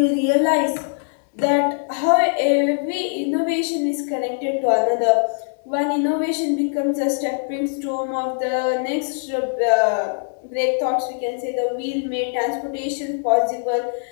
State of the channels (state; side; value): silent; right; 65 dB below the other